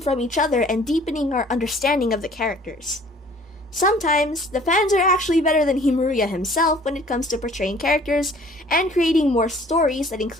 from each other and deepening our understanding of the characters. Sometimes, the fans are actually better than Himuruya himself when it comes to portraying characters and creating more stories that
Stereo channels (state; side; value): normal; both; correlation 0.53